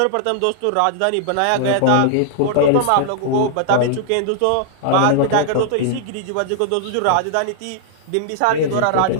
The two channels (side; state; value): both; different; correlation -0.01